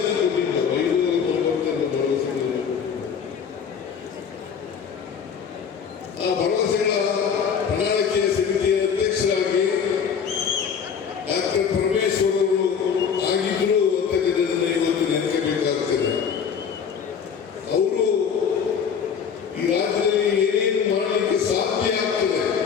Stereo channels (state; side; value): quieter; right; 7.0 dB